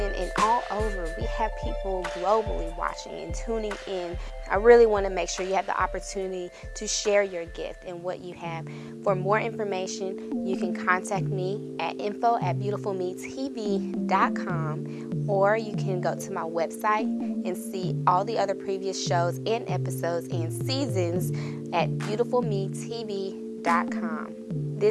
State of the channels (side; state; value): both; identical; correlation 1.00